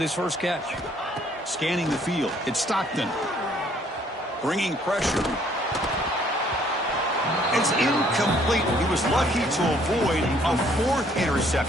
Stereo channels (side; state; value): both; normal; correlation 0.63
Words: his first catch. Scanning the field. It's Stockton. Bringing pressure. It's incomplete. He was lucky to avoid a 4th